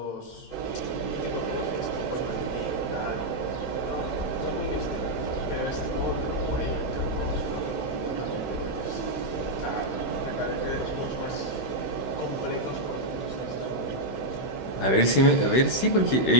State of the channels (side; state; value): right; late; 16 ms